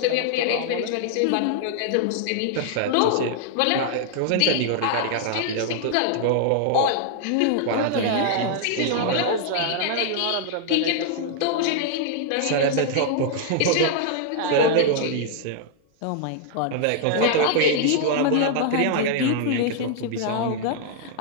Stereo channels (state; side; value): different; both; correlation 0.00